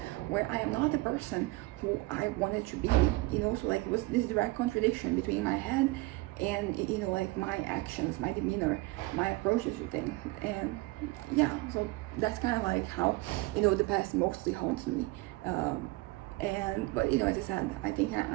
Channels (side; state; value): left; quieter; 21.5 dB